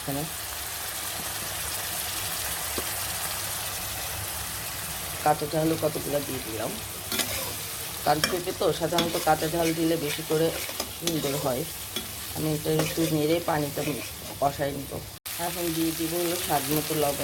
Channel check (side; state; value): both; identical; correlation 1.00